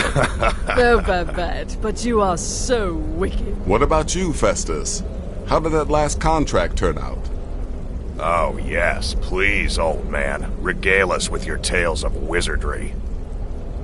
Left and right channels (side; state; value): both; identical; correlation 1.00